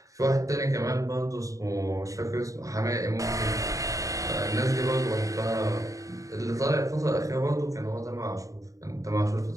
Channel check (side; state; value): left; late; 0.16 ms